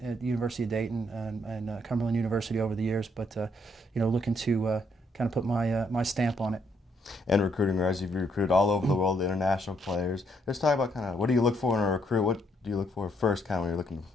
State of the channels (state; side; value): normal; both; correlation 0.73